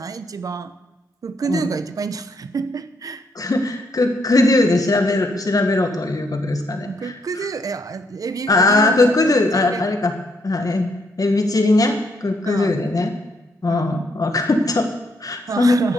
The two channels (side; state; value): both; normal; correlation 0.73